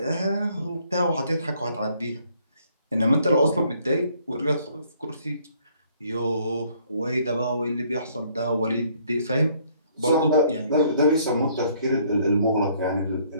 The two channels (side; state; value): both; inverted; correlation -0.64